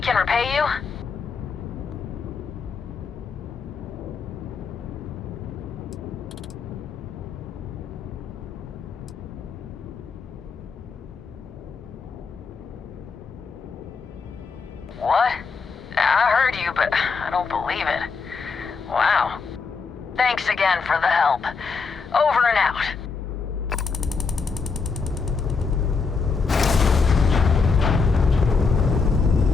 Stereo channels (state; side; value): quieter; right; 5.0 dB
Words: repay you? What? I heard you, but I don't believe it. Wow. Thanks again for the help. Over and out.